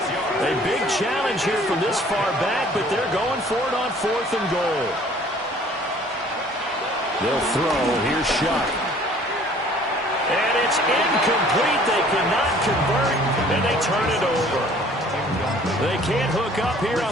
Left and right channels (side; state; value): both; normal; correlation 0.54